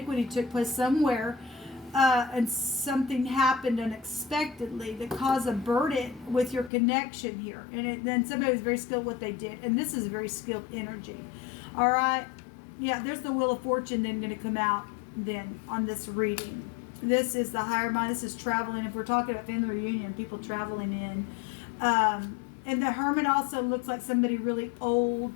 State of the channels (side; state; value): right; drops out; at 6.7 s